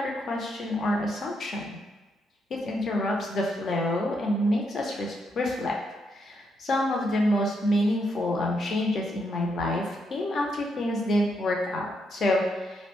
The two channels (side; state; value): both; normal; correlation 0.79